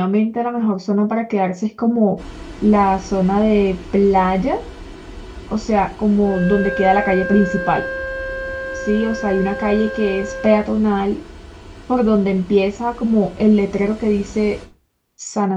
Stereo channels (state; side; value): identical; both; correlation 1.00